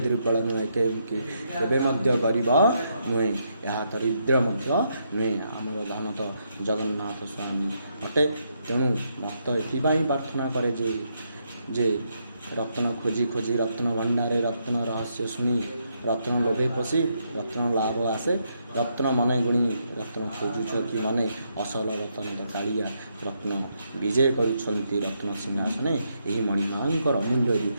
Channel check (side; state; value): both; inverted; correlation -0.78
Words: नुहे केबे मध्य गरीब नुहे यह दरिद्र मध्य नुहे आमर धन तो जगन्नाथ स्वामी अटे। तेणु भक्त एथिपाई प्रार्थना करे जे रत्न खोजी खोजी रत्न भंडारे रत्न रहस्य शुणी रत्न लोभे पशी रत्न लाभ आसे रत्न मने गुणी रत्न खोजुछ कि मने असल रत्न कालिया रत्न विजय करुछंती रत्न सिंहासने एही मणिमांकर अमूल्य